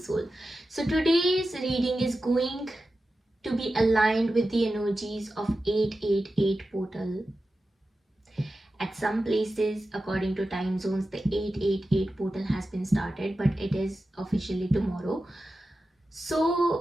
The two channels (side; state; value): both; normal; correlation 0.93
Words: Soul. So today's reading is going to be aligned with the energies of 888 portal. At some places, according to time zones, the 888 portal has been started, but it is officially tomorrow.